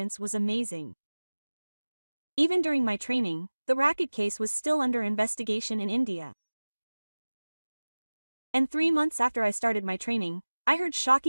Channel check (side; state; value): both; inverted; correlation -1.00